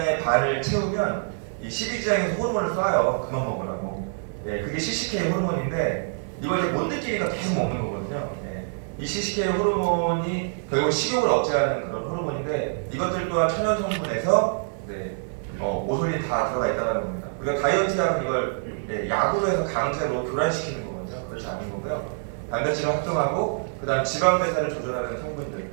반을 채우면 이 십이지장에서 호르몬을 쏴요. 그만 먹으라고. 네, 그게 CCK 호르몬인데 이걸 이제 못 느끼니까 계속 먹는 거거든요. 네, 이 CCK 호르몬이 결국 식욕을 억제하는 그런 호르몬인데 이것들 또한 천연 성분에서 네, 오솔린 다 들어가 있다는 겁니다. 우리가 다이어트 약은 이걸 네, 약으로 해서 강제로 교란시키는 거거든요. 그렇지 않은 거고요. 단백질을 합성하고 그다음 지방 배사를 조절하는 성분들,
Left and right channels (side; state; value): left; silent; 61 dB below the other